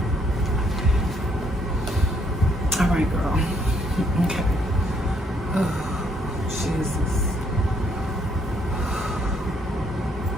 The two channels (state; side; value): normal; both; correlation 0.70